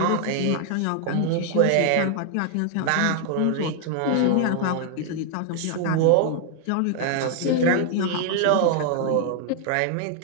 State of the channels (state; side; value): different; both; correlation 0.00